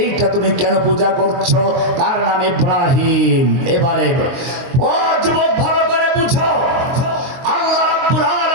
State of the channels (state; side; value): late; left; 22 ms